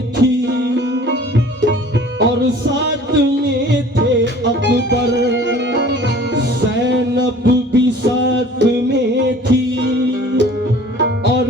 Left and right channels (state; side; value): normal; both; correlation 0.48